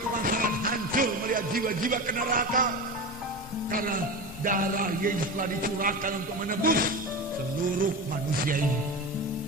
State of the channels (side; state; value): both; normal; correlation 0.25